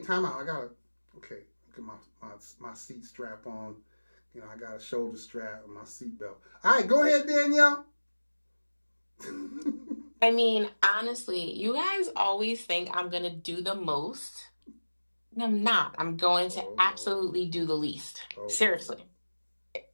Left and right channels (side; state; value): both; inverted; correlation -1.00